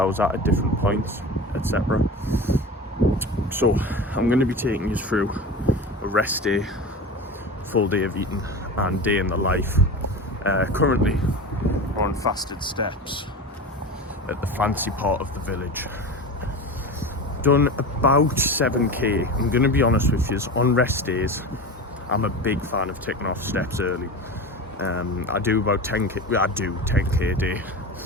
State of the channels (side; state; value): both; normal; correlation 0.29